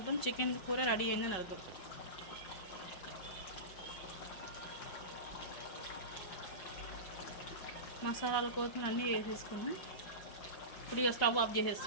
చికెన్ కూర రెడీ అయిందని అర్థం. మసాలాలు కొత్తిమీర అన్నీ వేసేసుకున్నాం. ఇప్పుడు ఇక స్టవ్ ఆఫ్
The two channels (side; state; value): right; late; 5.3 ms